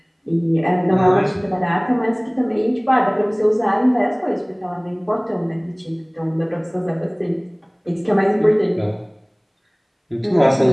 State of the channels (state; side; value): identical; both; correlation 1.00